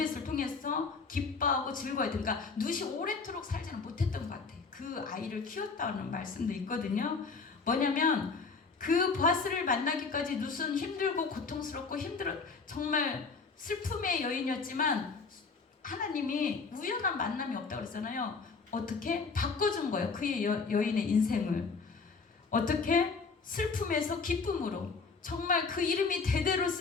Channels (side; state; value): right; quieter; 4.6 dB